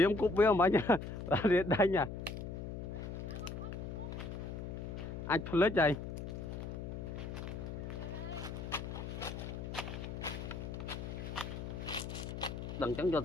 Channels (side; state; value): left; noise; hum, 6 dB below the sound